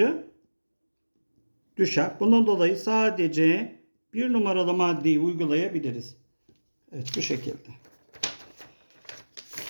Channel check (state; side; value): inverted; both; correlation -1.00